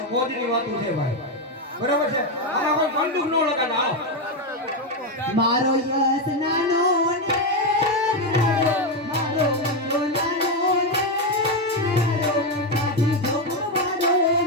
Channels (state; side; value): normal; both; correlation 0.07